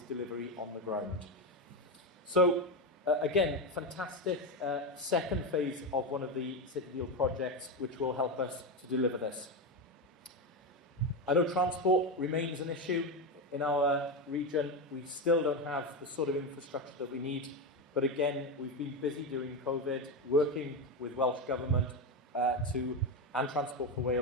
on the ground. So again, fantastic second phase of one of the City Deal projects, which will help us to deliver this. I know transport remains an issue in our region. We still don't have the sort of infrastructure that we need, But again, we've been busy during COVID, working with Welsh Government and Transport for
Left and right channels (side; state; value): both; normal; correlation 0.13